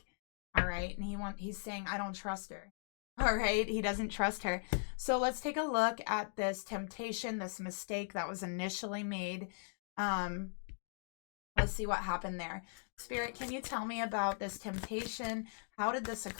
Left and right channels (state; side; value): silent; right; digital silence